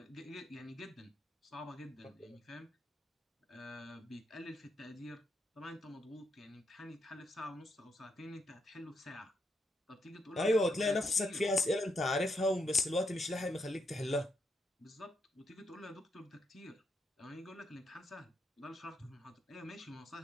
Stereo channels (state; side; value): normal; both; correlation 0.78